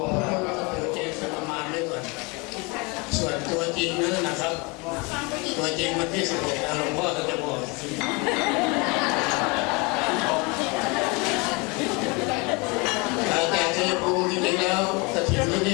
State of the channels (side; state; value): right; quieter; 28.4 dB